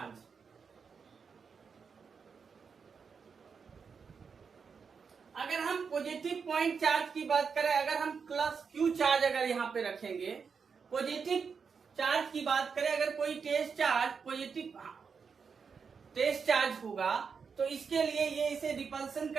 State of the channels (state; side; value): quieter; left; 5.8 dB